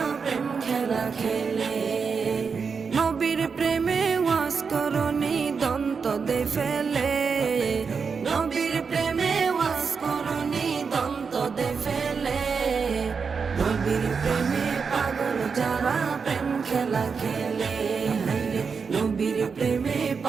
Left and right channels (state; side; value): quieter; left; 5.5 dB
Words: প্রেম খেলা খেলে। নবীর প্রেমে ওয়াজ করনি দন্ত দে ফেলে, নবীর প্রেমে ওয়াজ করনি দন্ত দে ফেলে। নবীর প্রেমে পাগল যারা প্রেম খেলা খেলে, হায়রে নবীর প্রেমে